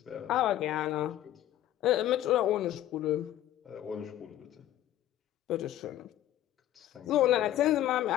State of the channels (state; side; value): quieter; right; 12.8 dB